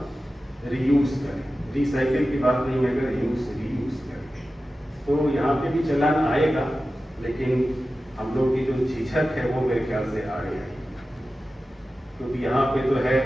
रीयूज करें। रिसाइकिल की बात नहीं, मैं रीयूज करें। तो यहाँ पे भी चलान आएगा, लेकिन हम लोग की जो झिझक है वो मेरे ख्याल से आगे आएगी। क्योंकि यहाँ पे तो है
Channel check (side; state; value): both; normal; correlation 0.94